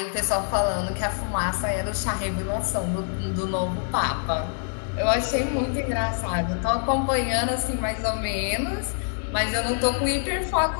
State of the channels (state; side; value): silent; right; digital silence